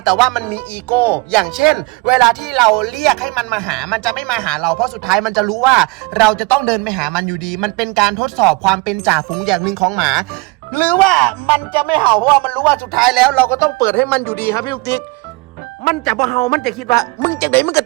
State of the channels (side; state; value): left; quieter; 25.4 dB